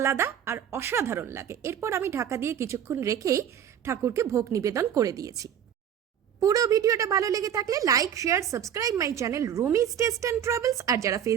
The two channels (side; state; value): left; quieter; 9.2 dB